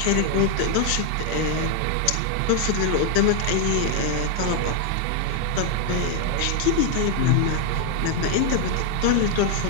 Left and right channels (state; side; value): different; both; correlation 0.00